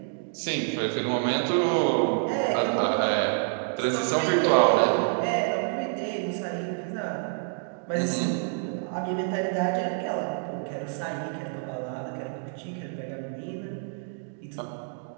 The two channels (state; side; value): silent; left; digital silence